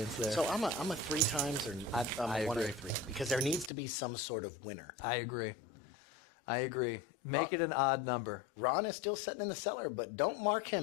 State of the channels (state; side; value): drops out; right; at 3.7 s